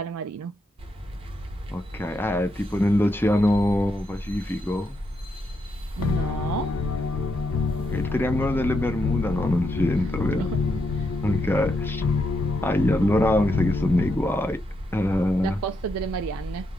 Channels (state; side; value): normal; both; correlation 0.81